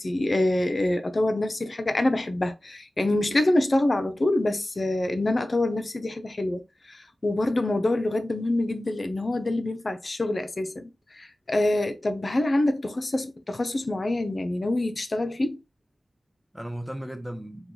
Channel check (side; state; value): both; normal; correlation 0.96